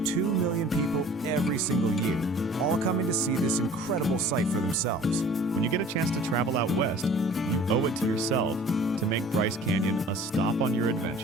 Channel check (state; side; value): normal; both; correlation 0.48